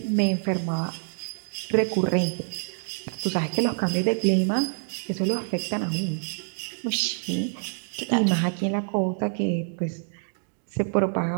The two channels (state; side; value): silent; left; 61 dB below the other